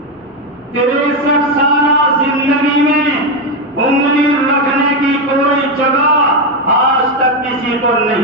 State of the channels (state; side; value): normal; both; correlation 0.08